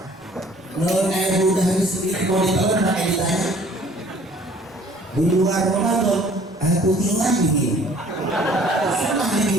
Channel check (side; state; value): both; normal; correlation 0.55